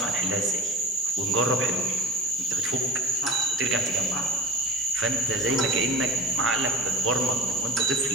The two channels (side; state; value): both; normal; correlation 0.35